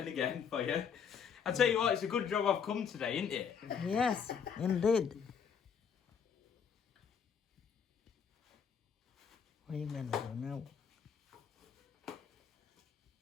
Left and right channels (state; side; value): quieter; right; 7.1 dB